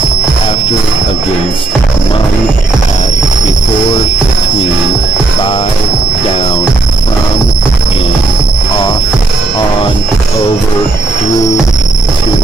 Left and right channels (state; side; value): quieter; left; 3.2 dB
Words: after, against, among, at, before, between, by, down, from, in, off, on, over, through, to,